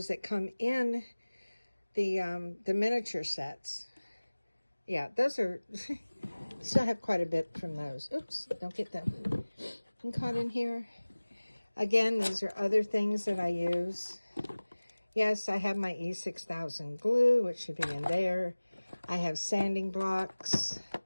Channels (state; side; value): inverted; both; correlation -1.00